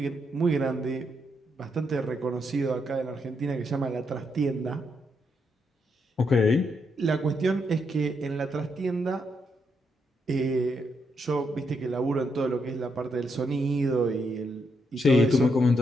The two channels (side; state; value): both; normal; correlation 0.79